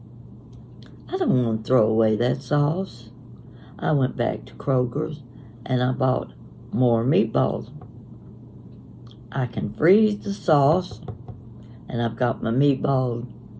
I don't want to throw away that sauce. I went back to Kroger's and I bought more meatballs. I can freeze the sauce, and I've got my meatballs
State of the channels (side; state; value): both; identical; correlation 1.00